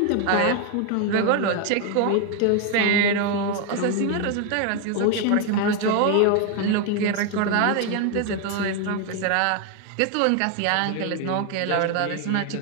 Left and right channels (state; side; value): different; both; correlation 0.01